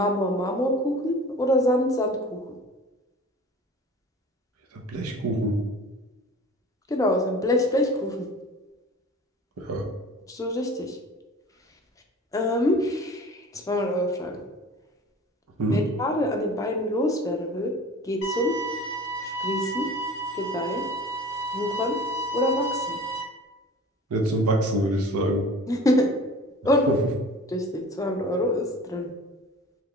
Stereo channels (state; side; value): normal; both; correlation 0.41